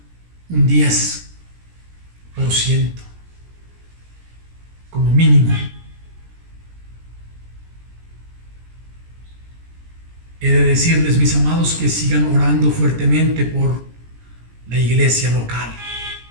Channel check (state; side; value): late; left; 17 ms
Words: un 10% como mínimo? He de decirles, mis amados, que sigan orando fuertemente por la iglesia local.